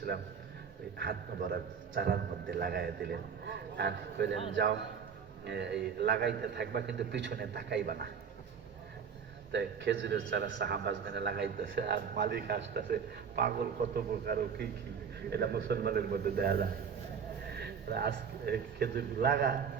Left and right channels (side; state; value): left; quieter; 6.7 dB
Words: ওই হাত মোবারক চারার মধ্যে লাগাইয়া দিলেন, আর কইলেন যাও এই লাগাইতে থাকবা, কিন্তু পিছনে তাকাইবা না। তাই খেজুরের চারা সাহাবাজমেনে লাগাইতেছে, আর মালিক আসতেছে, পাগল কত প্রকার ও কি কি, এটা মুসলমানের মধ্যে দেয়া যায়। আজকে খেজুর লাগা,